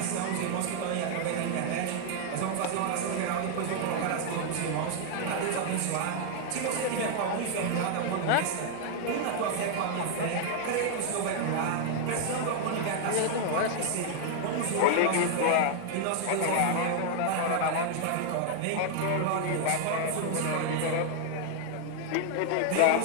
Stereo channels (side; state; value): both; different; correlation 0.00